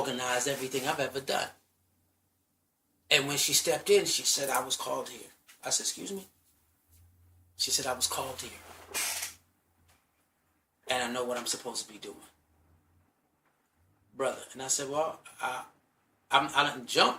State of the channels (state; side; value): identical; both; correlation 1.00